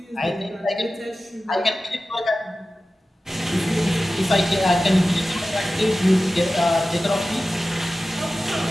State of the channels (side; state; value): both; normal; correlation 0.95